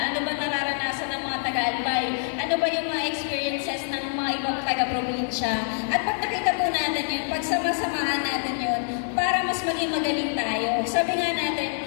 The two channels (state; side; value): silent; right; digital silence